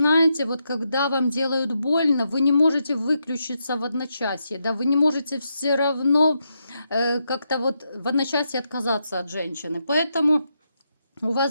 вот когда вам делают больно, вы не можете выключиться в одночасье, да, вы не можете все равно как-то вот в одночасье отказаться от женщины. Поэтому у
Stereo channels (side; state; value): both; inverted; correlation -0.82